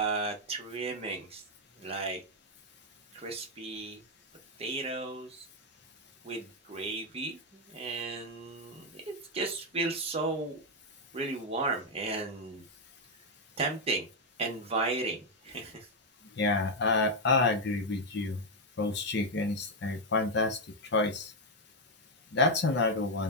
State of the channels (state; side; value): normal; both; correlation 0.02